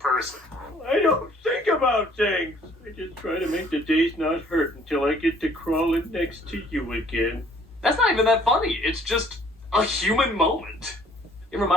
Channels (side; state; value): both; normal; correlation 0.58